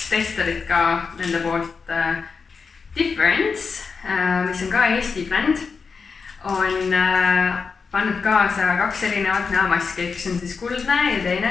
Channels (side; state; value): right; quieter; 5.2 dB